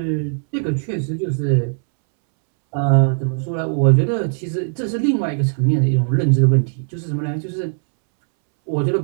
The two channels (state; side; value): silent; left; 66 dB below the other